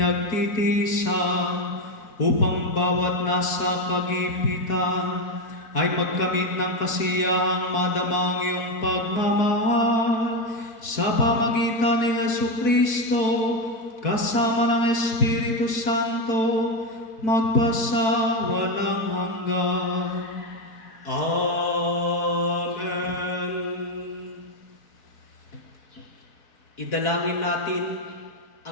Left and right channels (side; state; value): right; late; 4.6 ms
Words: upang bawat nasa kagipitan ay magkamit ng kasiyahang madamang iyong pagmamahal sa pamagitan ni Yesu Kristo kasama ng Espiritu Santo magpasawalang hanggan. Amen. Idalangin natin